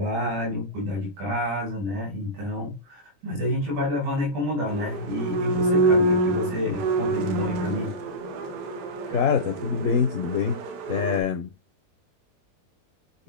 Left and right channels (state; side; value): late; left; 21 ms